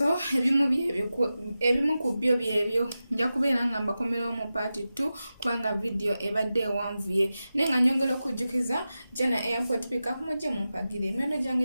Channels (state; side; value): inverted; both; correlation -0.93